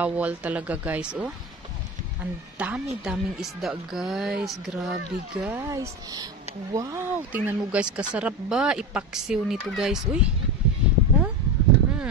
talaga guys, oh. Ang dami-daming isda guys. Grabe guys. Wow, tingnan mo guys, kasarap ba ipaksiw nito guys, uy. Oh?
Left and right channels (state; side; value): normal; both; correlation 0.23